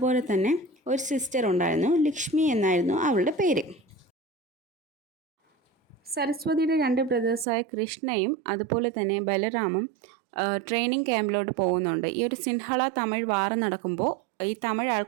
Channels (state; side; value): drops out; left; at 7.5 s